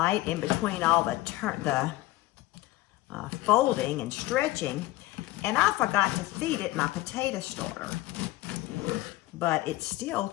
in between all the folding and stretching, and I forgot to feed it my potato starter. But it still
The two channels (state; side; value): quieter; right; 17.9 dB